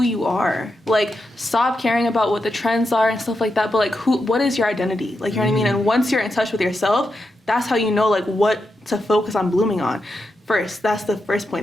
you are. Like, stop caring about what the trends are and stuff like that, but, like, what is your identity? Like, you know what I mean? And once you're in touch with yourself, that's how you know, like, what to focus on blooming on. First, that's the first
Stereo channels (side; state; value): both; normal; correlation 0.86